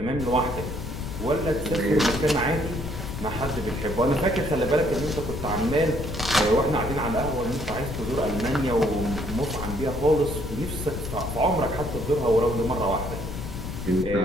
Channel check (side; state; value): left; noise; rumble, 7 dB below the sound